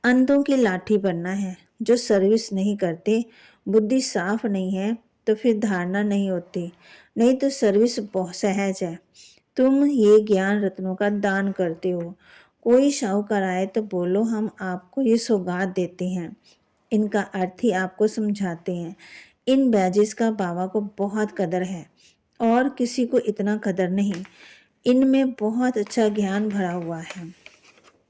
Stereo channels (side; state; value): both; identical; correlation 1.00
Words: अंधों की लाठी बनना है। जो सर्विस नहीं करते, बुद्धि साफ नहीं है तो फिर धारणा नहीं होती, नहीं तो सर्विस बहुत सहज है। तुम ये ज्ञान रत्नों का दान करते हो। कोई शाहूकार आए तो बोलो हम आपको ये सौगात देते हैं, इनका अर्थ ही आपको समझाते हैं। इन बैजेस का बाबा को बहुत कदर है और किसी को इतना कदर नहीं। इनमें बहुत अच्छा ज्ञान भरा हुआ है,